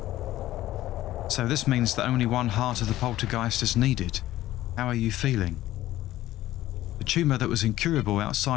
So this means that only one heart of the poltergeist is needed. How are you feeling? The tumour that was incurable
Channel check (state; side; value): quieter; right; 14.9 dB